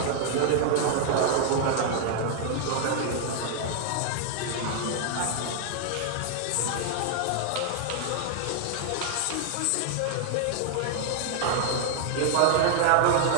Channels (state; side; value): different; both; correlation 0.00